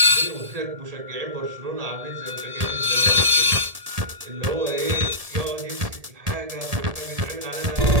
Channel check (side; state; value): left; late; 1.7 ms